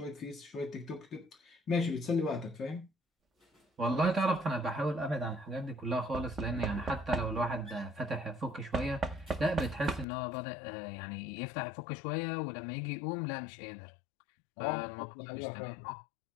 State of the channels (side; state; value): right; drops out; at 10.1 s